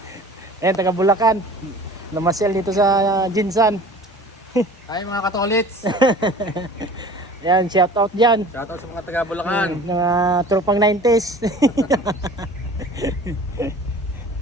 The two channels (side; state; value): both; normal; correlation 0.43